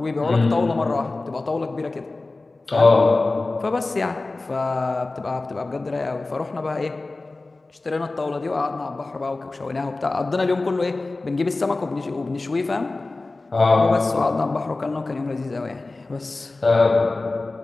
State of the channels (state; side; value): quieter; right; 3.3 dB